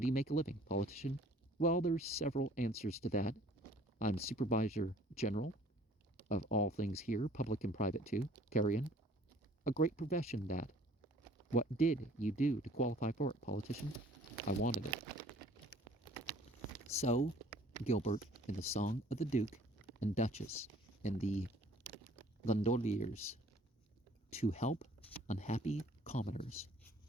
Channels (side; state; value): both; normal; correlation 0.55